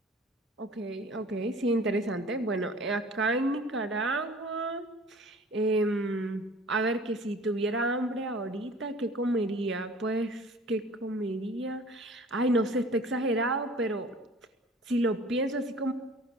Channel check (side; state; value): both; normal; correlation 0.46